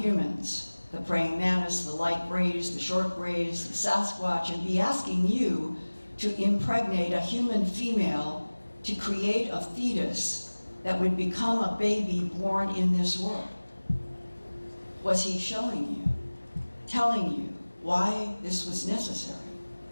the praying mantis, the light grays, the short grays, the Sasquatch, and be asking you to impregnate a human female to create a fetus that would become a baby born in this world? Was he showing you, telling you why this was necessary?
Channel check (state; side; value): inverted; both; correlation -1.00